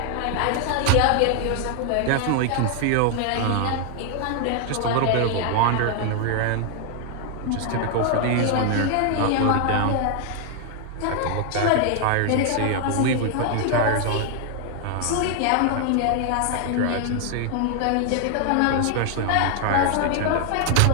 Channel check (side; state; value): both; different; correlation 0.00